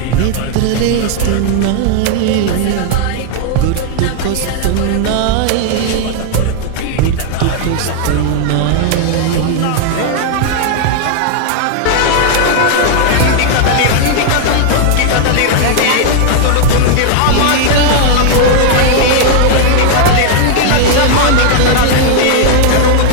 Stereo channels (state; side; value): different; both; correlation 0.00